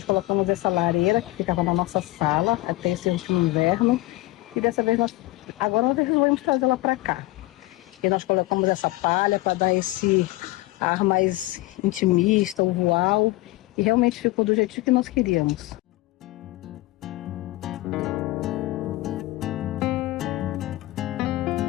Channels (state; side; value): quieter; right; 19.1 dB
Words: colocamos essa lareira que ficava na nossa sala até esse último inverno. E dessa vez agora nós resolvemos trazê-la para cá. E nós colocamos essa palha para dar esse ar mais intimista, usual. E realmente ficou do jeitinho que nós queríamos.